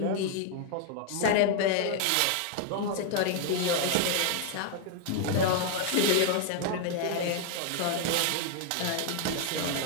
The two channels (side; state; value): both; different; correlation 0.00